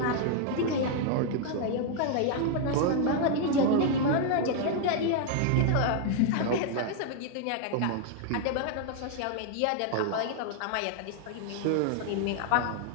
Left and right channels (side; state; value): both; different; correlation 0.00